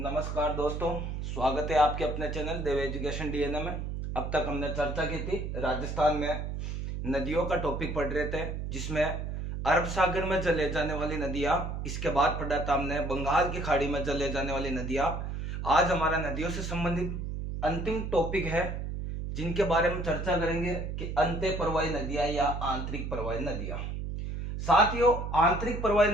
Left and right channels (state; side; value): noise; right; hum, 4 dB below the sound